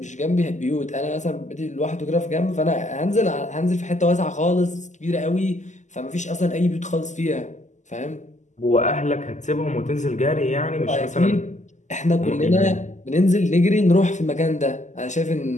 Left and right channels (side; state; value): right; late; 0.34 ms